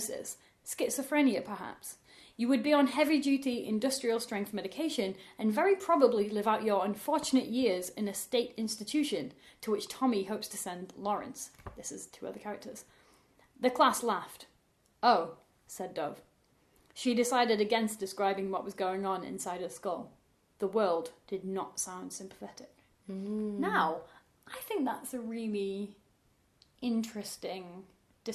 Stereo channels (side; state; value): both; identical; correlation 1.00